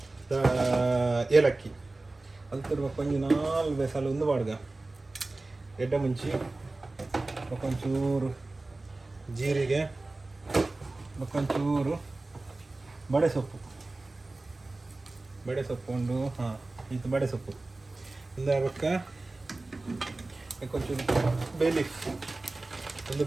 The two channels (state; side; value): quieter; left; 3.1 dB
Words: ಏಲಕ್ಕಿ ಅಲ್ತರು ಕೊಂಚ 4 ಬೇಸಲು ಒಂದು ಬಾಡ್ಗ ಎಡ್ಡ ಮುಂಚಿ ಒಂಚೂರು ಜೀರಿಗೆ ಒಂಚೂರು ಬಡೆ ಸೊಪ್ಪು ಉಂಡು ಇದು ಬಡೆ ಸೊಪ್ಪು ಇಂದ ಕೊಂಚೂರು